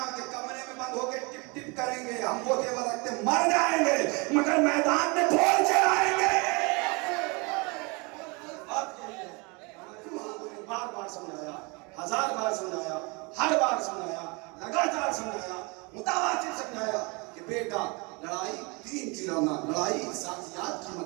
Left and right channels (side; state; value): left; quieter; 29.2 dB